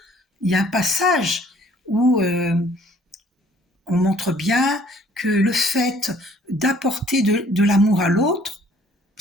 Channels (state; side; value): normal; both; correlation 0.58